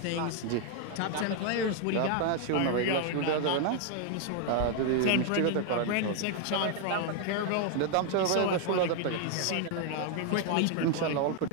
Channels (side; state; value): both; different; correlation 0.00